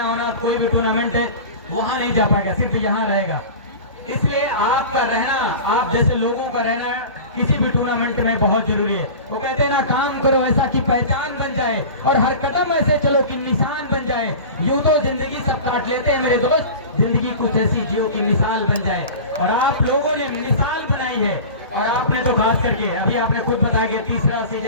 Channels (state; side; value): inverted; both; correlation -0.34